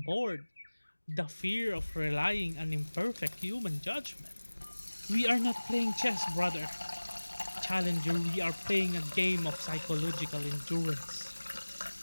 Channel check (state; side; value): inverted; both; correlation -1.00